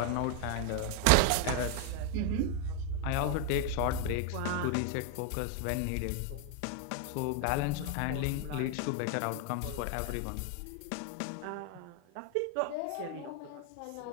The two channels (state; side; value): different; both; correlation 0.01